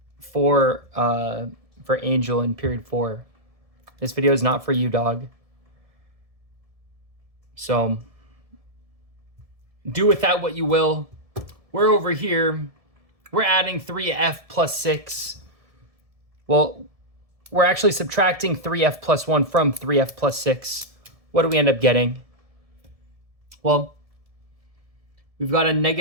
for Angel in period 4. This video is not for you, dog. So do with that what you will. We're over here. We're adding 3f plus 6. Well, we're actually subtracting 3f plus 1 from 3f plus 6. What do we end up getting? Well, we've got a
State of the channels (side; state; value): left; late; 1.7 ms